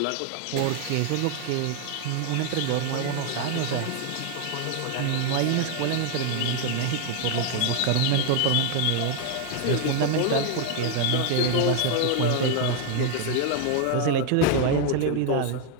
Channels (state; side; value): different; both; correlation 0.00